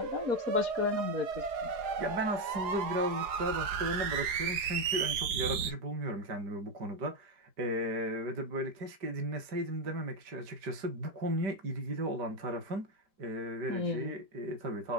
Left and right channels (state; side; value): late; left; 4.8 ms